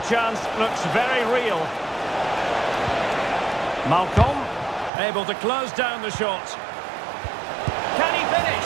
chance looks very real. Malcolm, able to close down the shot. Can he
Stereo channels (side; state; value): left; drops out; at 4.9 s